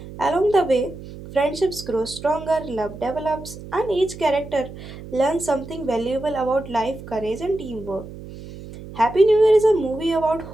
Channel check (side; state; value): right; noise; hum, 14 dB below the sound